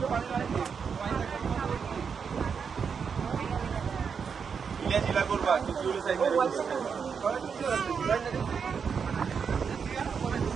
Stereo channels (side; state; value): left; quieter; 6.3 dB